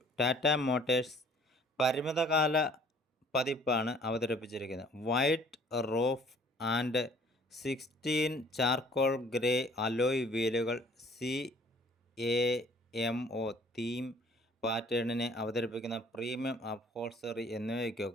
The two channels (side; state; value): both; normal; correlation 0.55